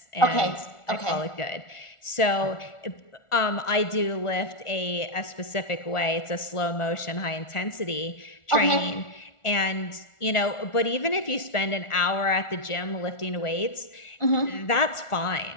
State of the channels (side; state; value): right; late; 1.4 ms